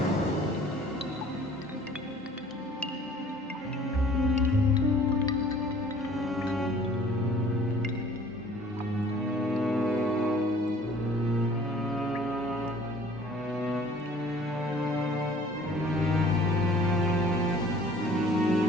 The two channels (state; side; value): normal; both; correlation 0.52